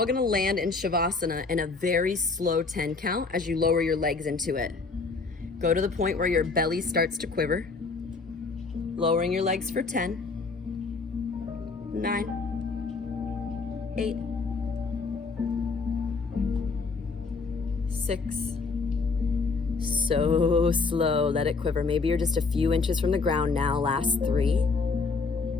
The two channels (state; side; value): quieter; right; 4.3 dB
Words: gonna land in Shavasana in a very slow 10 count as you lower your legs into it. Go to the point where your belly starts to quiver. Lowering your legs for 10, 9, 8, 6. So slow, let it quiver. Maybe you're just a few inches from the ground now. Last 3,